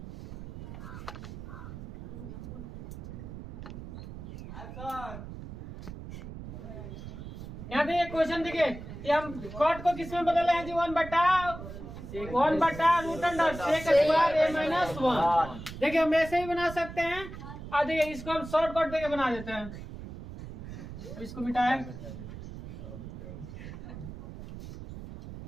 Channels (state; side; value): noise; right; rumble, 11 dB below the sound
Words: यहाँ देखिए क्वेश्चन देखिए, ये हम कॉट को किस में बदल हैं जी, 1 बटा रूट अंडर सेक स्क्वायर ए माइनस 1। देखिए हम ऐसे ही बना सकते हैं, और देखिए इसको हम शॉर्ट कट देके बना देते हैं। इसको मिटाए,